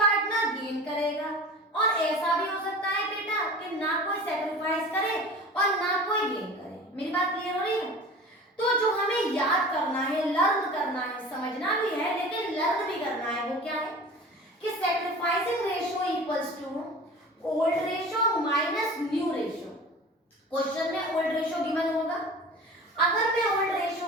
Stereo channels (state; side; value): normal; both; correlation 0.38